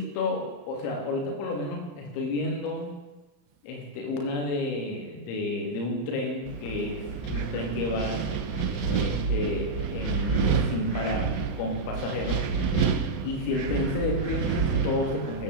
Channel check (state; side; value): late; right; 34 ms